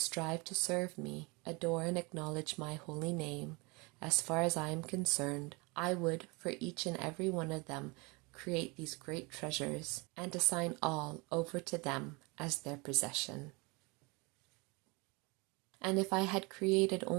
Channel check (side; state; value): left; quieter; 27.6 dB